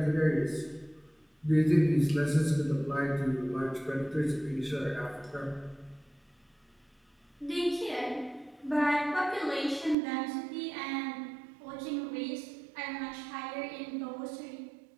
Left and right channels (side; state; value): left; drops out; at 10.0 s